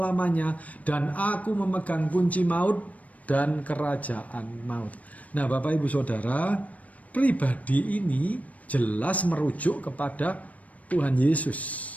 Dan aku memegang kunci maut dan kerajaan maut. Nah, Bapak Ibu Saudara, pribadi ini jelas merujuk kepada Tuhan Yesus.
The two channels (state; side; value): late; right; 0.069 ms